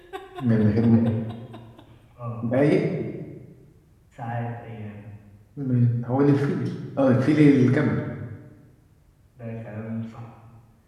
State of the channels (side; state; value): both; identical; correlation 1.00